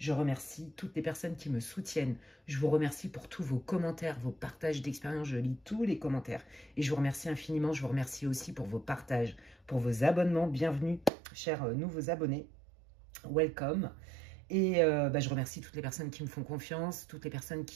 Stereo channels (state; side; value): drops out; left; at 11.1 s